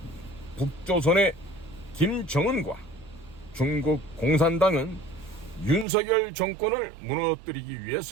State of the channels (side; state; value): left; drops out; at 5.9 s